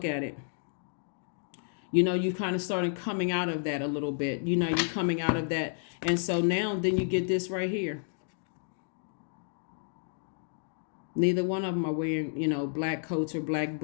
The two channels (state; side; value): silent; right; digital silence